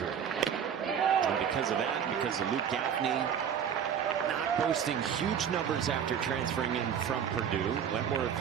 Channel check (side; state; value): left; quieter; 8.2 dB